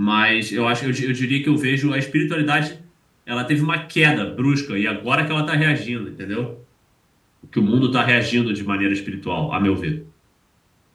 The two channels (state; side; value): identical; both; correlation 1.00